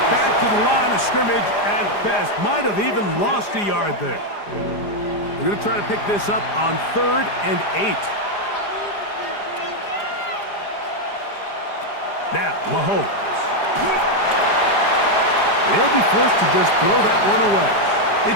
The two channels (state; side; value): late; right; 4.9 ms